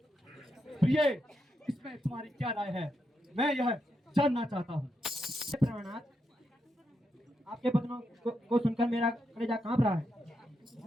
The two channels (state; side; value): normal; both; correlation 0.83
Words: प्रिय, इसमें तुम्हारी क्या राय है, मैं यह जानना चाहता हूँ। प्रणाम, आपके वचनों को सुनकर मेरा कलेजा कांप रहा है।